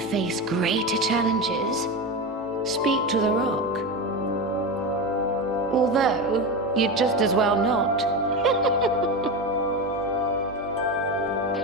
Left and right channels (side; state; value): both; normal; correlation 0.19